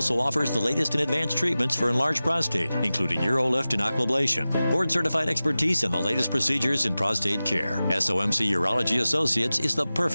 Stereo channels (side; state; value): both; inverted; correlation -0.96